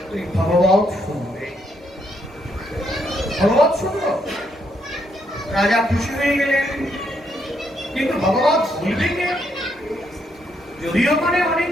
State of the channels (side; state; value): both; normal; correlation 0.75